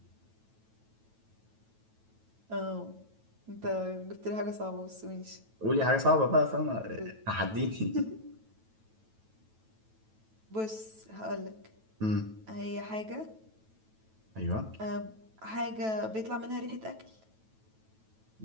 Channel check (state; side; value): late; left; 9.2 ms